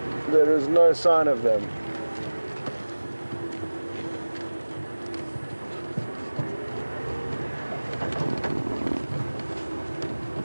there is no sign of them.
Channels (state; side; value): inverted; both; correlation -1.00